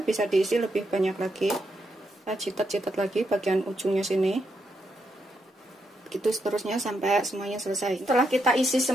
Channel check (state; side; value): normal; both; correlation 0.81